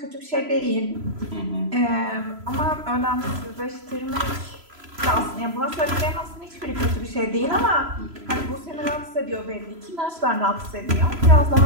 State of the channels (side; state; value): left; late; 3.0 ms